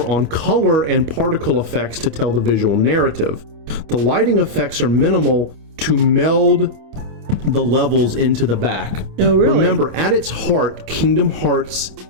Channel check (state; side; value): late; left; 27 ms